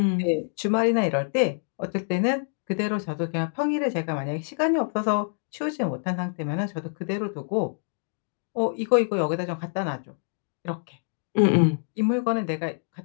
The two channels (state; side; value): silent; right; digital silence